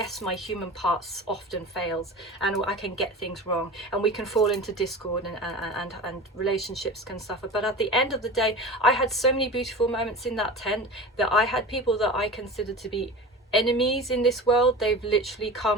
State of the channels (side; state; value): both; normal; correlation 0.33